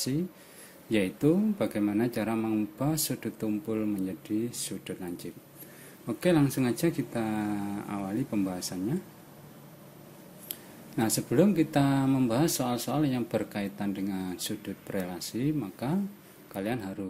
yaitu bagaimana cara mengubah sudut tumpul menjadi sudut lancip. Oke, langsung aja kita awali pembahasannya. Nah, sebelum kita membahas soal-soal yang berkaitan dengan sudut berelasi, maka kalian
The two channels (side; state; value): both; identical; correlation 1.00